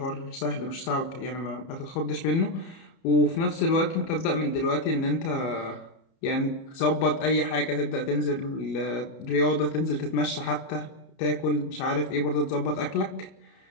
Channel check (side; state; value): right; late; 30 ms